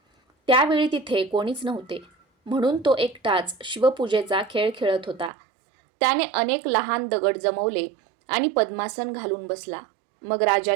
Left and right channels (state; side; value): drops out; left; at 5.3 s